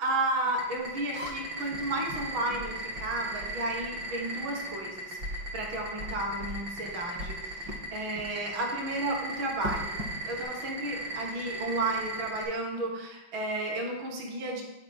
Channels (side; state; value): left; late; 6.1 ms